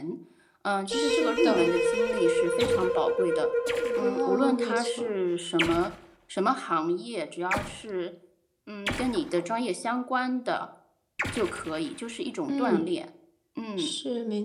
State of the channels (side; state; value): both; identical; correlation 1.00